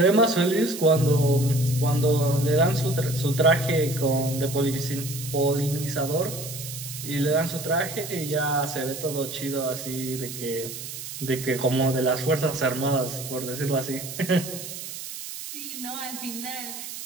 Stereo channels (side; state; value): right; noise; hiss, 9 dB below the sound